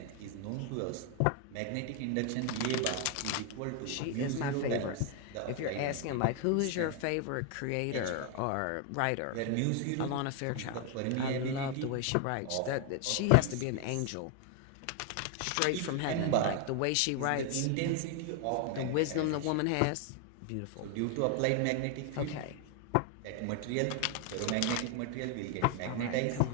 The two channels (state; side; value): different; both; correlation 0.00